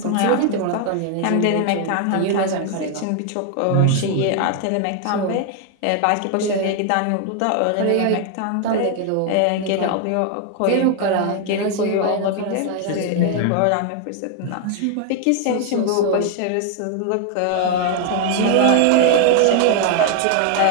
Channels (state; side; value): different; both; correlation 0.00